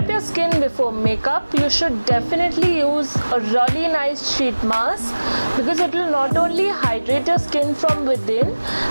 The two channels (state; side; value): inverted; both; correlation -1.00